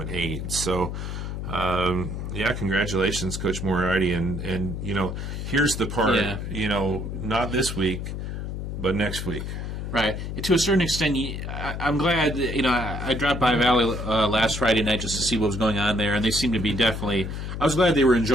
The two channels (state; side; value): noise; left; hum, 5 dB below the sound